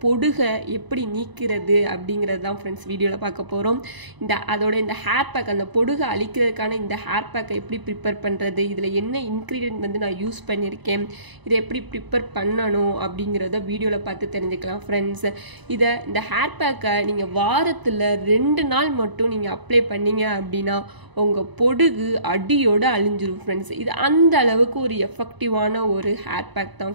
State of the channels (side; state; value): left; late; 1.0 ms